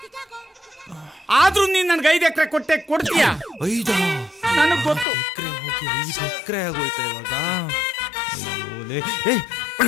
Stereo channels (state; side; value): drops out; right; at 5.1 s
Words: ಆದ್ರೂ ನೀನ್ ನನ್ಗೆ 5 ಎಕರೆ ಕೊಡ್ತೀಯ. 5 ನನಗ್ ಗೊತ್ತು. ಎಕರೆ ಹೋಗಿ 5 ಎಕರೆ ಆಗೋಯ್ತಾ ಇವಾಗ.